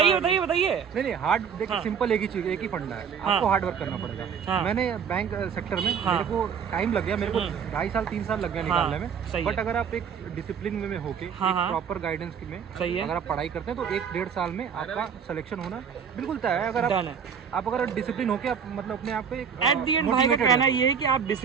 नहीं हार्ड देखिए सिंपल एक ही चीज, एक ही फंडा है, आपको हार्ड वर्क करना पड़ेगा। मैंने बैंक सेक्टर में मेरे को टाइम लग गया, मेरे को 2.5 साल 3 साल लग गया निकालने में। बट अगर आप एक डिसिप्लिन में होके प्रॉपर गाइडेंस में अगर आप पढ़ाई करते हैं तो 1-1.5 साल में आपका सिलेक्शन होना बिल्कुल तय है। अगर आप अगर डिसिप्लिन होके आप मतलब अपने आप को एट दी एंड भाई का कहना ये है कि आप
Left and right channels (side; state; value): left; quieter; 7.1 dB